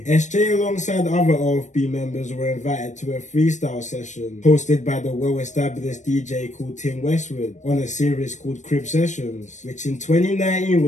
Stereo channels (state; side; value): late; right; 0.35 ms